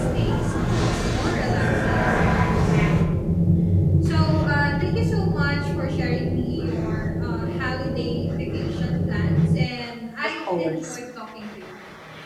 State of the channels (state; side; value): identical; both; correlation 1.00